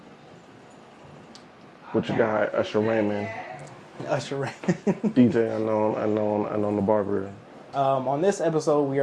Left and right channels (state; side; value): identical; both; correlation 1.00